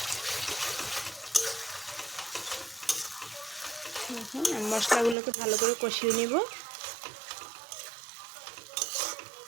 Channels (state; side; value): drops out; left; at 5.2 s